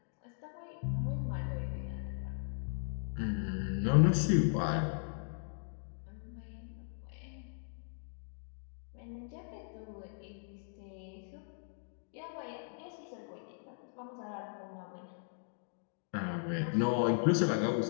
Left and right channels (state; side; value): silent; right; digital silence